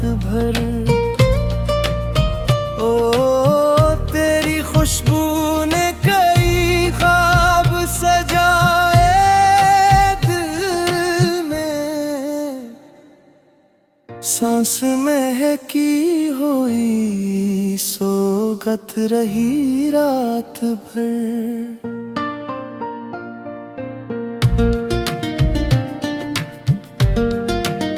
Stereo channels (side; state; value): both; identical; correlation 1.00